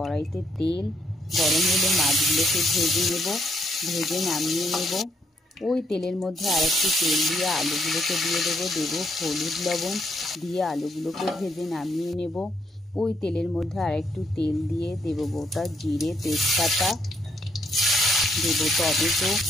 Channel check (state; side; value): normal; both; correlation 0.73